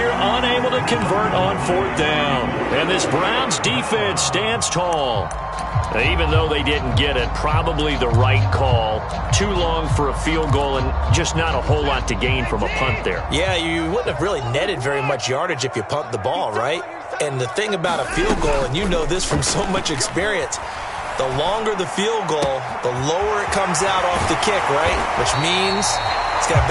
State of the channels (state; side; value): identical; both; correlation 1.00